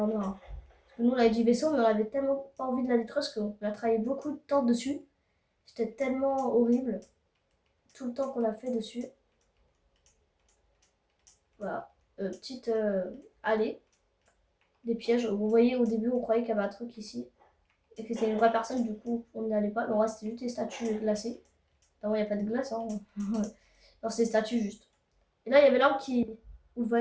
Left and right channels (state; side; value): identical; both; correlation 1.00